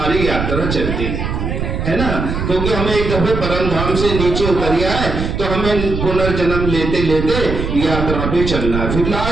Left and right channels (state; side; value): noise; right; rumble, 3 dB below the sound